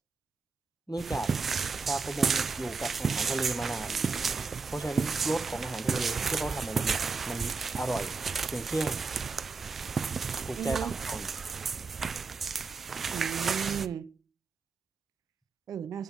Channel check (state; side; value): quieter; left; 4.5 dB